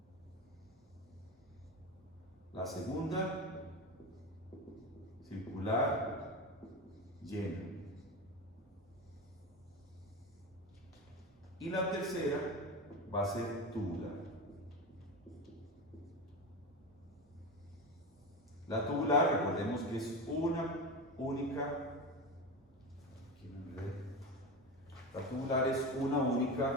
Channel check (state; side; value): normal; both; correlation 0.22